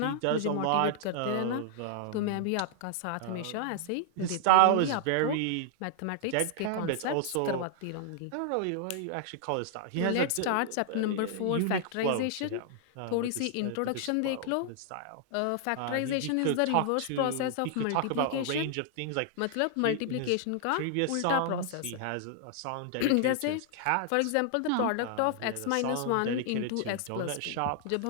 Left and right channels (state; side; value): different; both; correlation 0.00